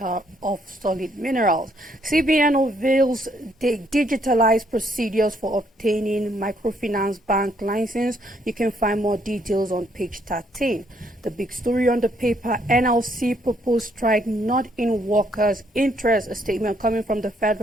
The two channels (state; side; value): normal; both; correlation 0.70